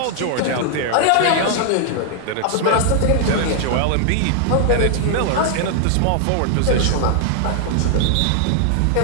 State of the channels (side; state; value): both; different; correlation 0.00